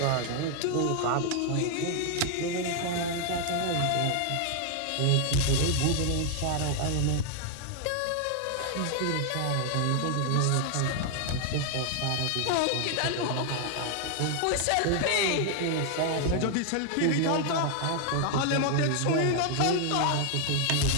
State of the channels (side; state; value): both; different; correlation 0.00